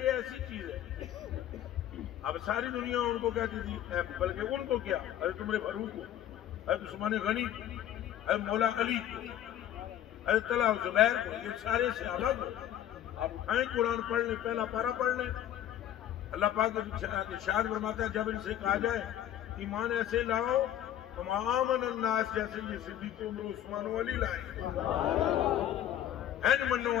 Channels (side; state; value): right; quieter; 11.4 dB